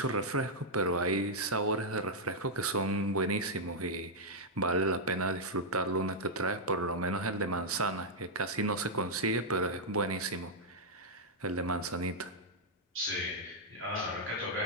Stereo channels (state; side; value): normal; both; correlation -0.06